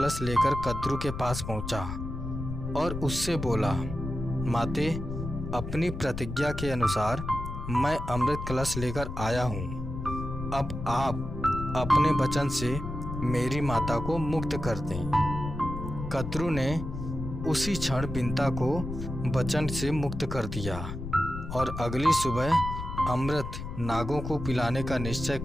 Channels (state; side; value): noise; left; rumble, 7 dB below the sound